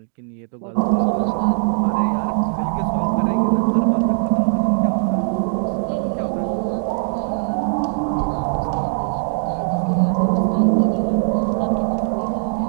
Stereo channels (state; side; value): silent; left; digital silence